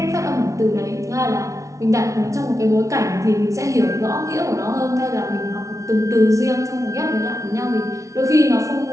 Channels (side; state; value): left; late; 0.15 ms